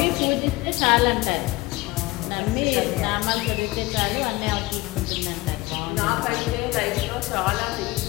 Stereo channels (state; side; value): quieter; right; 20.5 dB